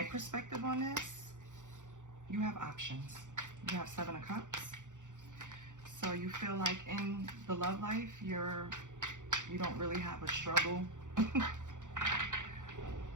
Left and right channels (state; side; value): late; left; 0.86 ms